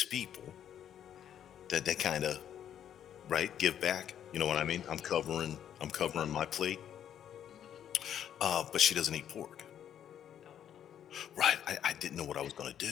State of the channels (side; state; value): right; quieter; 9.8 dB